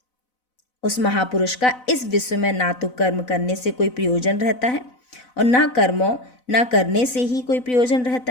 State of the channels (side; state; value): right; late; 4.0 ms